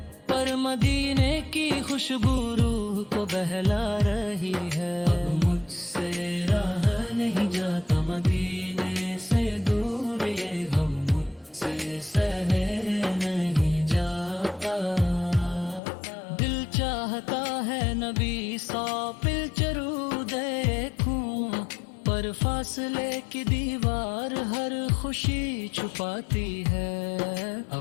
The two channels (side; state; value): right; drops out; at 15.8 s